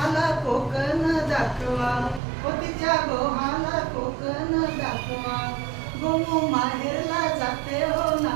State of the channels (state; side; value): drops out; left; at 2.2 s